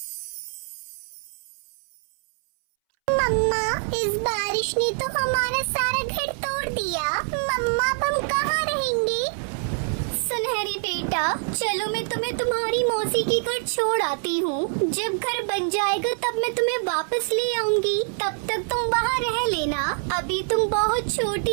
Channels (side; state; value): left; silent; 62 dB below the other